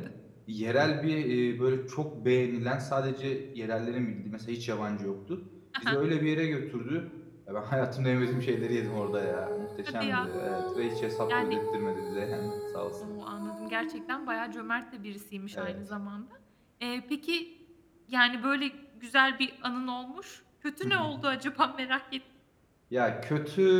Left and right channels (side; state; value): both; identical; correlation 1.00